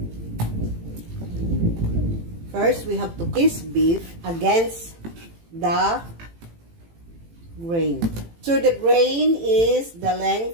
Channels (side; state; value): left; late; 18 ms